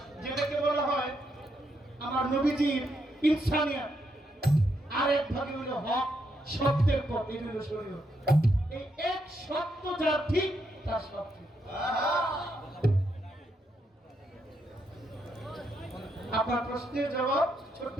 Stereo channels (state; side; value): normal; both; correlation 0.79